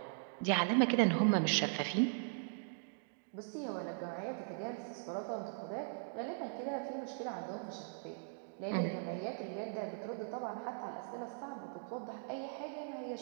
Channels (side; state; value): left; silent; digital silence